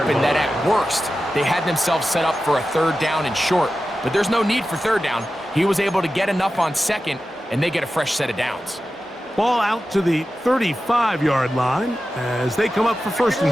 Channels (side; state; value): both; normal; correlation 0.93